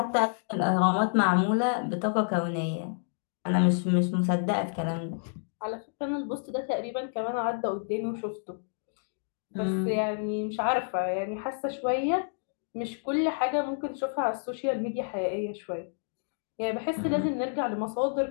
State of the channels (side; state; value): right; silent; digital silence